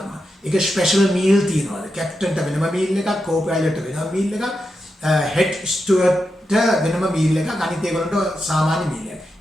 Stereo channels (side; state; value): both; normal; correlation 0.87